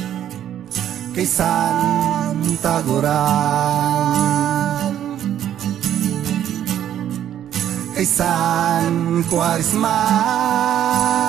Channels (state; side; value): quieter; left; 10.7 dB